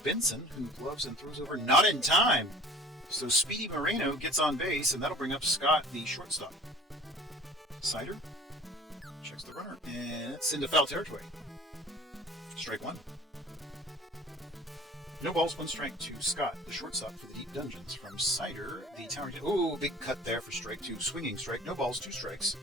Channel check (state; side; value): normal; both; correlation 0.45